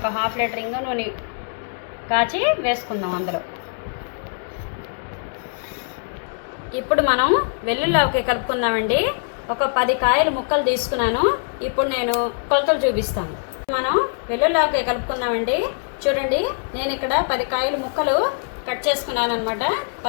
1/2 లీటర్ ఇంగు నూనె కాచి వేసుకుందాం అందులో. ఇప్పుడు మనం వెల్లుల్లి ఆవకాయ కలుపుకుందామండి. ఒక 10 కాయలు ముక్కలు తీసుకున్నాను. ఇప్పుడు నేను కొలతలు చూపిస్తాను. మనం వెల్లుల్లి ఆవకాయ కలుపుకుందామండి. చూడండి, నేను ఇక్కడ 10 కాయలు ముక్కలు కట్ చేసుకున్నాను అనమాట.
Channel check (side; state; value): right; silent; 63 dB below the other